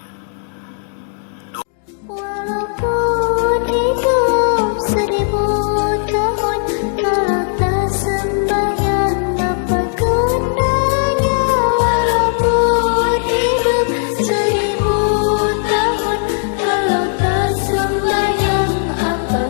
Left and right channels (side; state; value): right; silent; digital silence